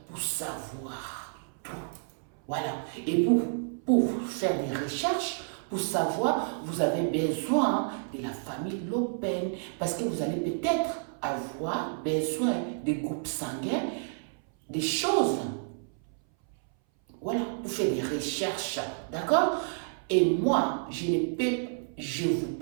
pour savoir tout. Voilà. Et pour faire des recherches, pour savoir, vous avez besoin de la famille Le Pen. Parce que vous allez peut-être avoir besoin des groupes sanguins, des choses. Voilà, pour faire des recherches, d'accord? Et moi, je vous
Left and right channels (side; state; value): left; silent; 58 dB below the other